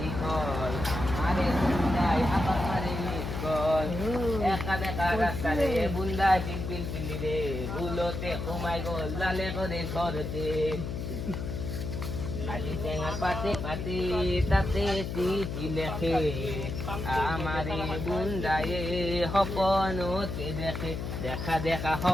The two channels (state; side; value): noise; left; hum, 5 dB below the sound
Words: মাৰে বুন্দাই হাতত মাৰে নিকল একা দেখা ৰাস্তাৰে বুন্দা পিল পিলি ৰে ভুলতে সোমাই গ'ল লালে কৰে ঘৰতে আজি টেঙাৰ পাতে পাতে তাতে চিঠি লেখে আমাৰে বুন্দায়ে সপনতে দেখে দেখা দেখা